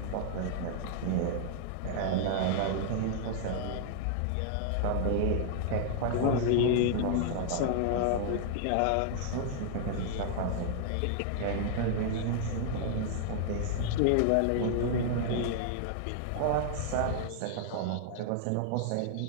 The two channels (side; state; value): both; different; correlation -0.01